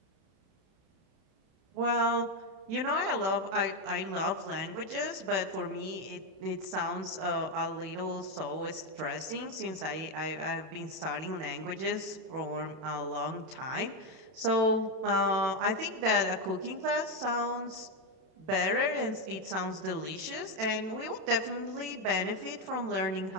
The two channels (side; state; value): left; late; 31 ms